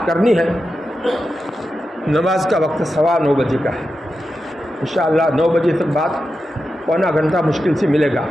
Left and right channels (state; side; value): normal; both; correlation 0.90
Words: کرنی ہے، نماز کا وقت 9:15 بجے کا ہے، انشاءاللہ 9 بجے تک بعد پونا گھنٹہ مشکل سے ملے گا۔